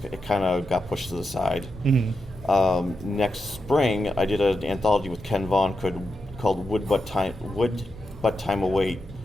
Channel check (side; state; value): both; normal; correlation 0.87